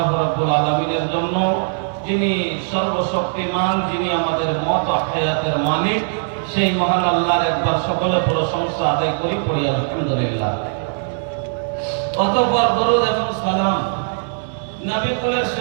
রাব্বুল আলামিনের জন্য যিনি সর্বশক্তিমান যিনি আমাদের মত হায়াতের মালিক সেই মহান আল্লাহর একবার সকলে প্রশংসা আদায় করি পড়ি আলহামদুলিল্লাহ অতঃপর দরুদ এবং সালাম নবী কুলের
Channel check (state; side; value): silent; left; digital silence